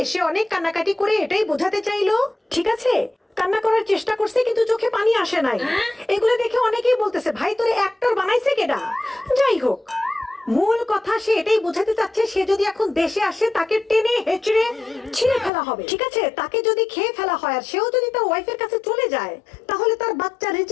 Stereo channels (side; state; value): right; drops out; at 15.5 s